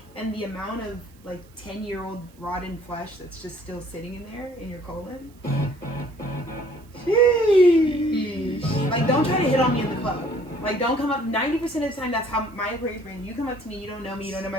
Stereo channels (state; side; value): noise; right; hiss, 30 dB below the sound